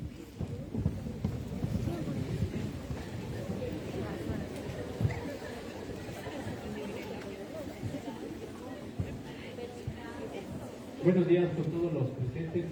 Buenos días con todos los presentes.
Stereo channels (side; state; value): both; identical; correlation 1.00